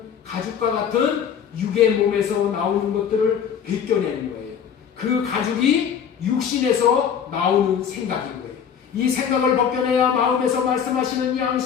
가죽과 같은 육의 몸에서 나오는 것들을 벗겨내는 거예요. 그 가죽이 육신에서 나오는 생각인 거예요. 이 생각을 벗겨내야 마음에서 말씀하시는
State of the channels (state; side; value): quieter; right; 7.9 dB